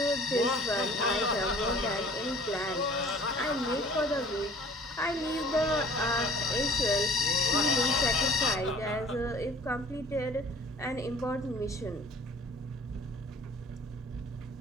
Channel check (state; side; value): normal; both; correlation 0.51